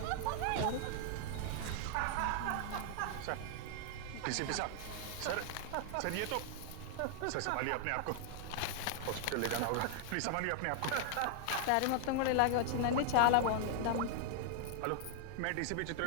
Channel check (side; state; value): both; different; correlation 0.00